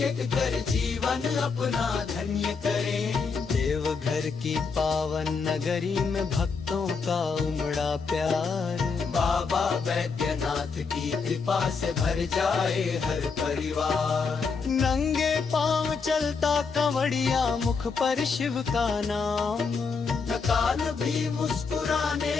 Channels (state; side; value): quieter; right; 5.1 dB